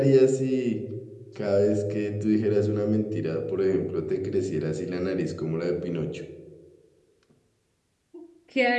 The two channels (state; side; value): identical; both; correlation 1.00